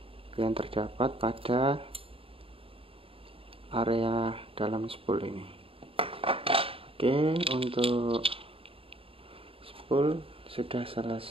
yang terdapat pada area dalam spool ini. Oke, untuk spool sudah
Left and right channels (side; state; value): left; late; 0.27 ms